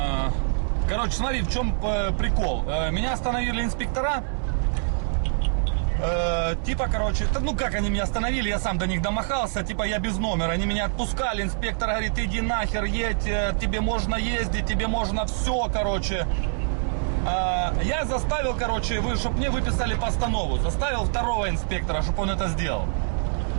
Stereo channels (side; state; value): left; silent; digital silence